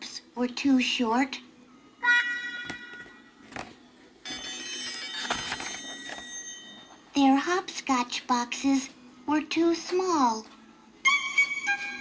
were too short. Their hopscotch boxes were too small.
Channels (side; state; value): both; identical; correlation 1.00